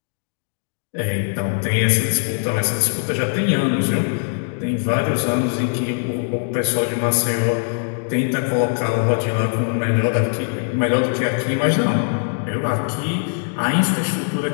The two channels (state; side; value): silent; right; digital silence